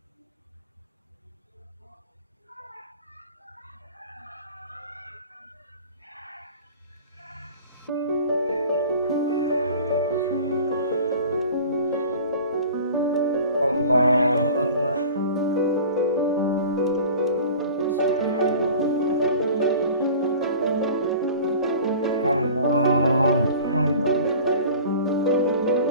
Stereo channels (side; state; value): both; inverted; correlation -0.43